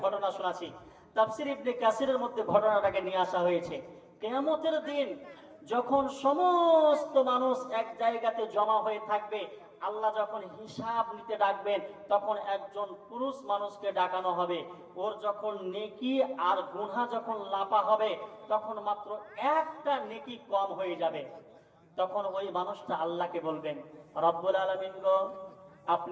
ঘটনা শোনাচ্ছি। তাফসীর ইবনে কাসিরের মধ্যে ঘটনাটাকে নিয়ে আসা হয়েছে। কিয়ামতের দিন যখন সমস্ত মানুষ এক জায়গাতে জমা হয়ে থাকবে, আল্লাহ যখন হিসাব নিতে ডাকবেন, তখন একজন পুরুষ মানুষকে ডাকানো হবে। ওর যখন নেকি আর গুনাহ যখন লাপা হবে, তখন মাত্র একটা নেকি কম হয়ে যাবে। তখন ওই মানুষটা আল্লাহকে বলবেন, রব্বুল আলামিন গো,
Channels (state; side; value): identical; both; correlation 1.00